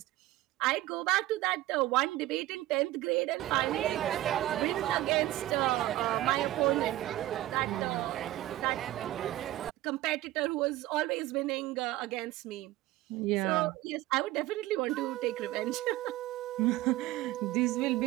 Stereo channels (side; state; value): left; quieter; 16.0 dB